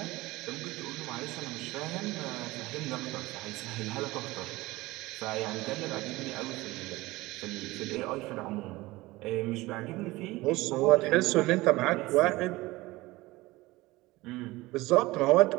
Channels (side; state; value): left; quieter; 20.1 dB